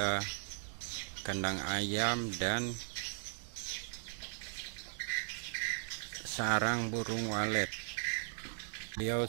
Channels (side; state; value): left; silent; digital silence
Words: kandang ayam dan sarang burung walet. Beliau